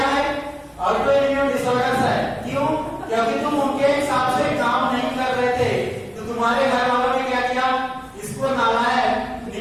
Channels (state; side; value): identical; both; correlation 1.00